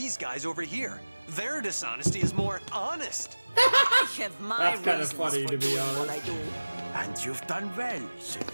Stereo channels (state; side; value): inverted; both; correlation -1.00